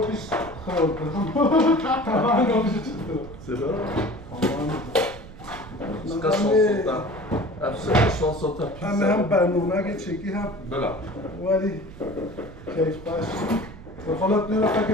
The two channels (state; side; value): noise; right; rumble, 16 dB below the sound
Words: بیش خراب کنم تمام او بیش چطور سرا شانسوتا همه هم برنامه چکی هم بله ولی کیف باش بخالت نیره